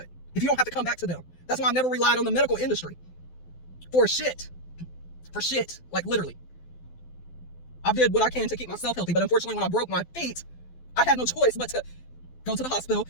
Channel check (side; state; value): right; late; 12 ms